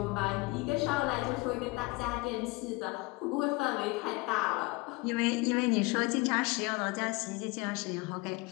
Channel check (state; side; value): quieter; right; 24.6 dB